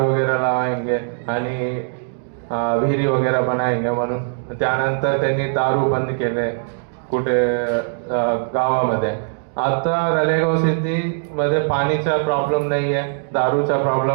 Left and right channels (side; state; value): left; silent; digital silence